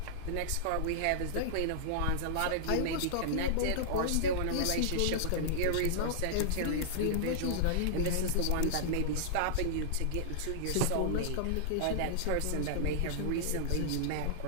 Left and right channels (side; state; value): both; different; correlation -0.01